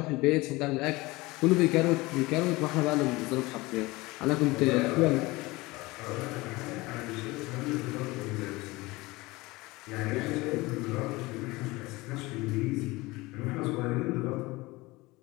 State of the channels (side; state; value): right; quieter; 21.6 dB